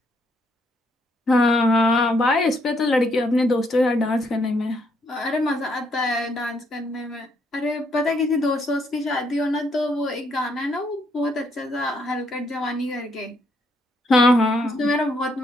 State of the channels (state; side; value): normal; both; correlation 0.73